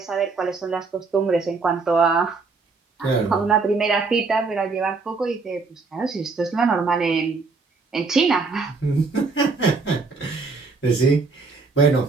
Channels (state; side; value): quieter; left; 4.2 dB